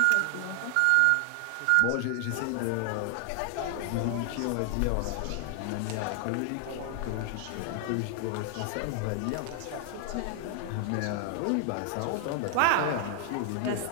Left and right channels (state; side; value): different; both; correlation 0.00